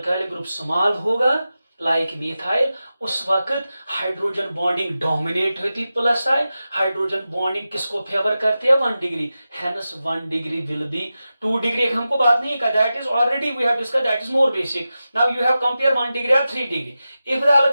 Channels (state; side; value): inverted; both; correlation -0.93